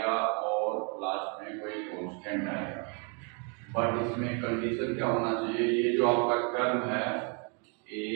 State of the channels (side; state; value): left; quieter; 37.0 dB